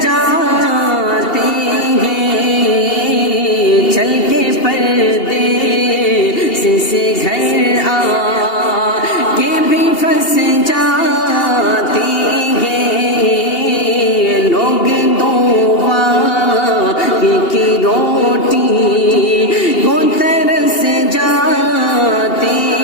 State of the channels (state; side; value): late; right; 2.8 ms